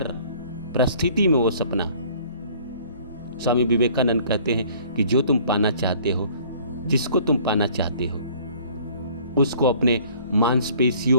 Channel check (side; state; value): both; inverted; correlation -0.54